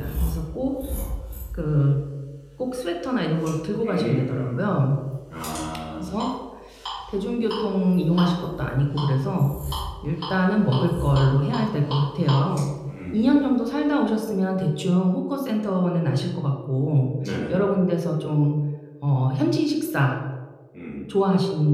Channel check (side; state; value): both; identical; correlation 1.00